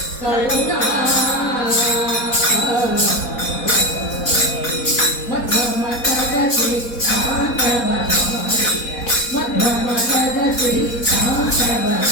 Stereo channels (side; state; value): right; late; 4.1 ms